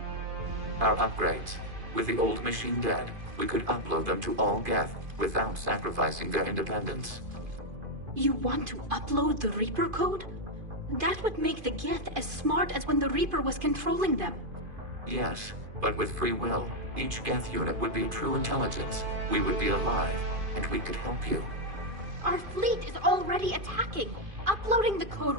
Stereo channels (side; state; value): left; late; 2.5 ms